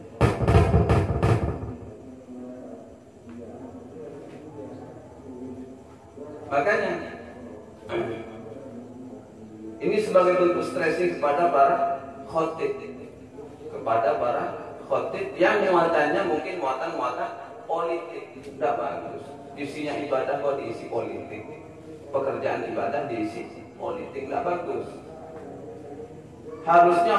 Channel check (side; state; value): both; identical; correlation 1.00